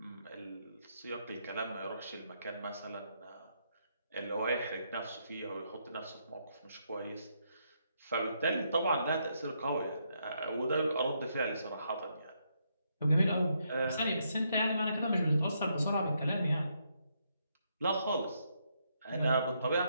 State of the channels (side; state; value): both; inverted; correlation -0.77